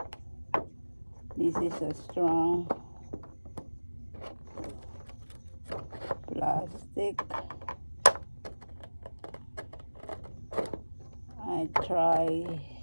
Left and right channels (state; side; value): inverted; both; correlation -1.00